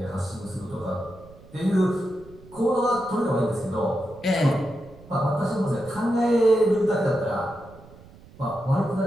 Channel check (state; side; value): noise; right; rumble, 22 dB below the sound